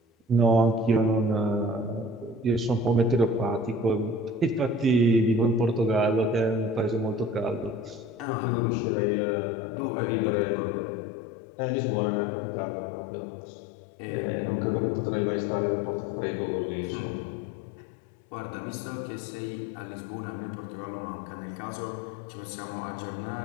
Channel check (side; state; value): right; drops out; at 8.2 s